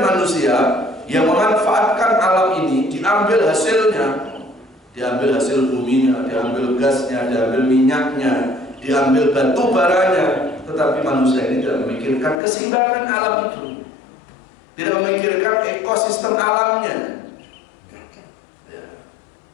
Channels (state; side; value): drops out; right; at 12.4 s